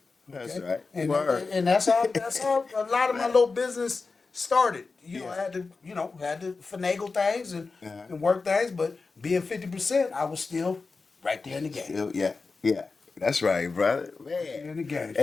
That's Okay? right. And, Word. and that's how a lot of my little business started. Yeah. I had to finagle things and work things, but being 50%, I was still right there in the game. Yeah. That's right, brother. Man. In the game.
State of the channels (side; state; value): right; quieter; 4.2 dB